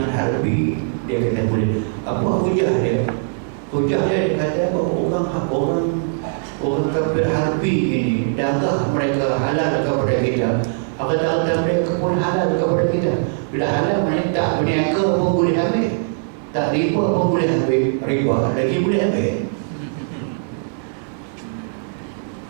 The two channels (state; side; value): silent; left; digital silence